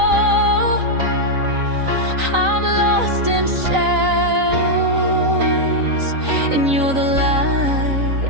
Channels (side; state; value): left; late; 3.9 ms